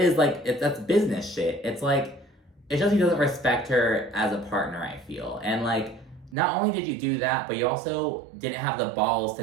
like, that's business shit. It's like, it shows he doesn't respect her as a partner, I feel. And, like, not only did you do that, but you also didn't have the balls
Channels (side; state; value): left; drops out; at 6.4 s